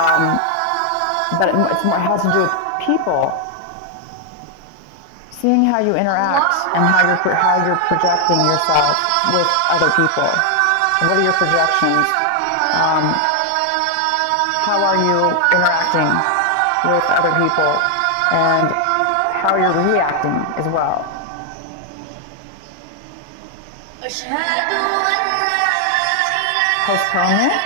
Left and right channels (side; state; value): both; different; correlation 0.00